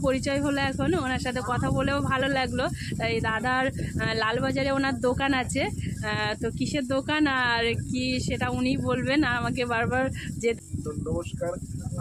পরিচয় হলো এখন, ওনার সাথে কথা বলেও ভালো লাগলো। এই দাদার লালবাজারে ওনার দোকান আছে, তো কিসের দোকান আর কি সেটা উনি বলবেন, আমাকে বারবার যে নমস্কার।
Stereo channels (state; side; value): identical; both; correlation 1.00